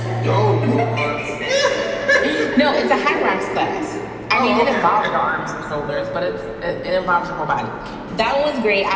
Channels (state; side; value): identical; both; correlation 1.00